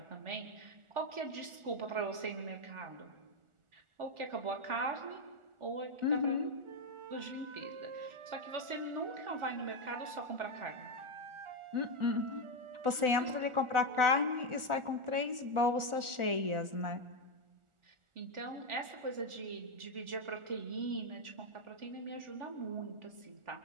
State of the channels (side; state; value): left; late; 1.4 ms